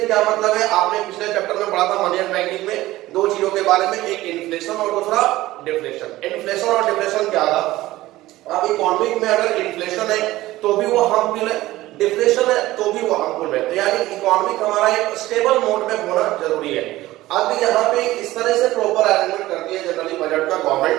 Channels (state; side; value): quieter; left; 16.9 dB